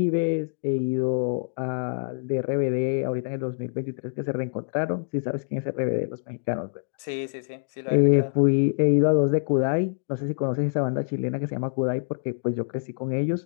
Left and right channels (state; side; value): silent; right; digital silence